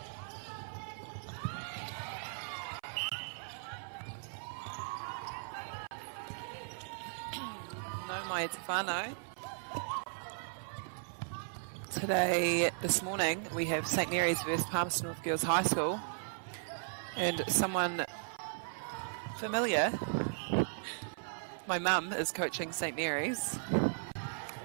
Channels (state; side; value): silent; left; 53 dB below the other